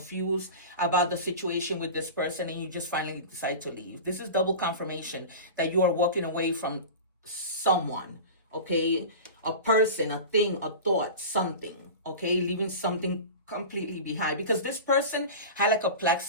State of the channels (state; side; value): inverted; both; correlation -0.31